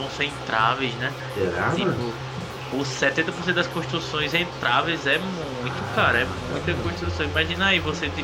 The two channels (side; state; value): both; identical; correlation 1.00